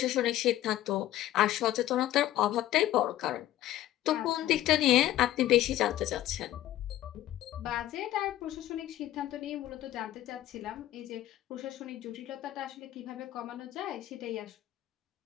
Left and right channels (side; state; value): right; quieter; 13.8 dB